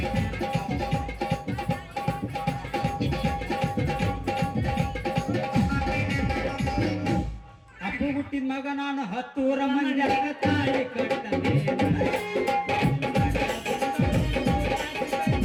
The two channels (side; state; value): both; identical; correlation 1.00